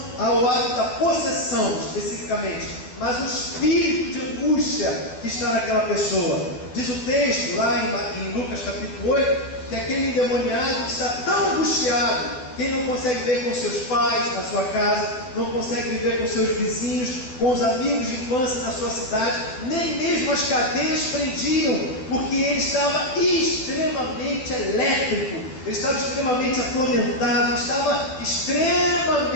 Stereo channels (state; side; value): late; right; 12 ms